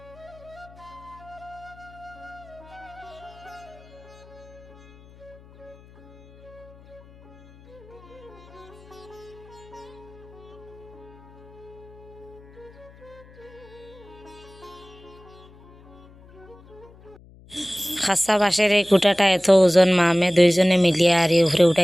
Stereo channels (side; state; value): left; noise; hum, 23 dB below the sound